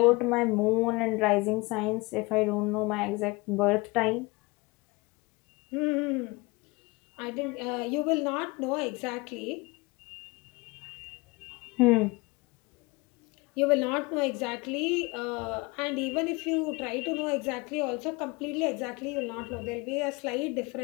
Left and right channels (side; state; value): right; quieter; 24.7 dB